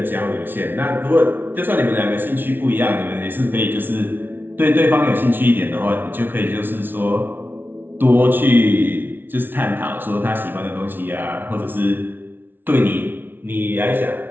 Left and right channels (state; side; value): late; left; 0.099 ms